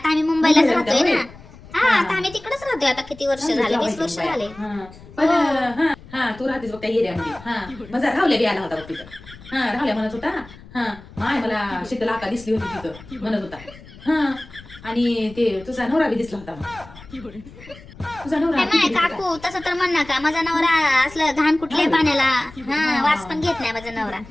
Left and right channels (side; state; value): left; noise; rumble, 19 dB below the sound